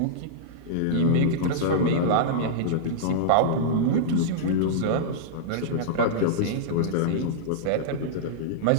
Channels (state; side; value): different; both; correlation -0.02